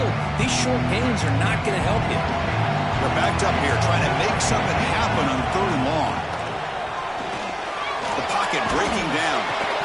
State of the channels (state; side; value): identical; both; correlation 1.00